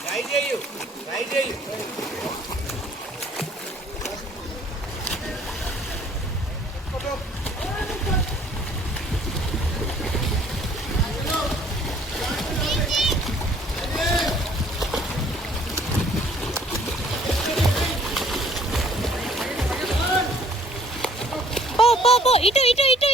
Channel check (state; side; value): normal; both; correlation 0.58